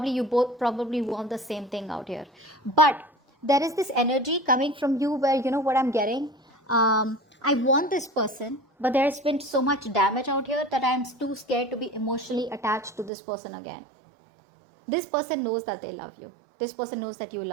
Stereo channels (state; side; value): drops out; left; at 13.1 s